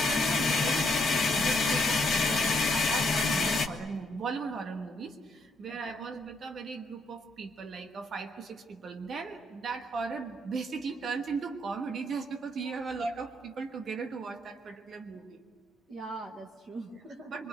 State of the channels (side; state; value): both; normal; correlation 0.73